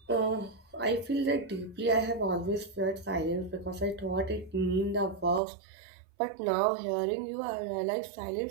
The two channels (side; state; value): left; drops out; at 5.4 s